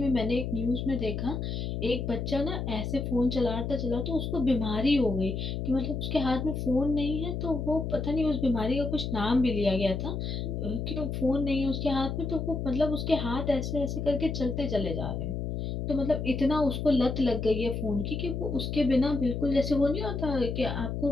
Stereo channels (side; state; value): left; noise; hum, 3 dB below the sound